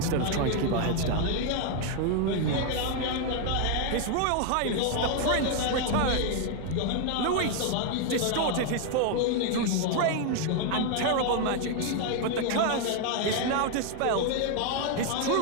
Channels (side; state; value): both; different; correlation 0.00